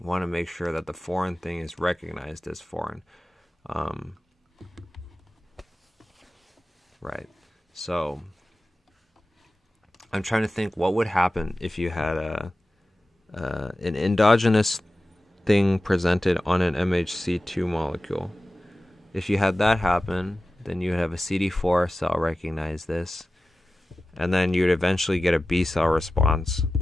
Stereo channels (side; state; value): both; normal; correlation 0.95